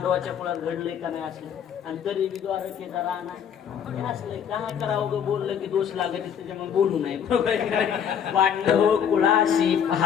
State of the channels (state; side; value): quieter; right; 8.2 dB